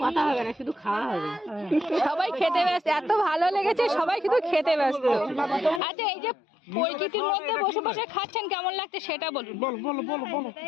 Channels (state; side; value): drops out; right; at 5.8 s